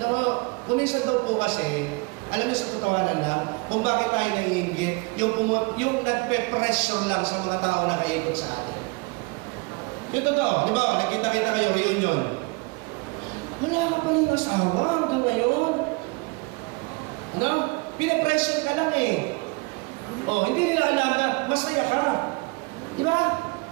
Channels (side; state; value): left; quieter; 28.3 dB